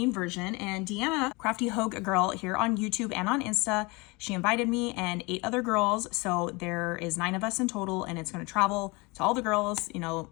version. And Deanna, Crafty Hogue Girl here on YouTube and on Insta, she invited me and 8 other girls. So there is 9 of us in total, and it's going to travel to all the girls. You know,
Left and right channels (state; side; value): quieter; right; 26.4 dB